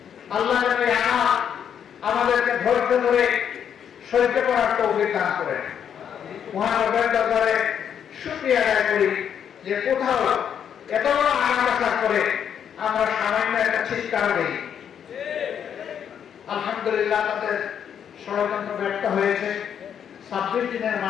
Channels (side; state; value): right; quieter; 8.5 dB